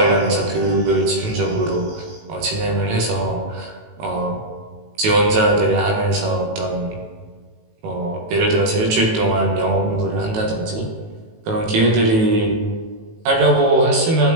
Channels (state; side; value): late; left; 18 ms